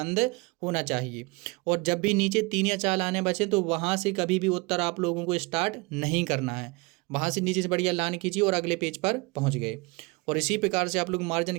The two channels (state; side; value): quieter; left; 26.6 dB